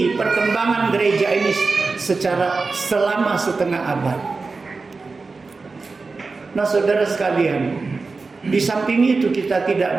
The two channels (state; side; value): quieter; left; 4.1 dB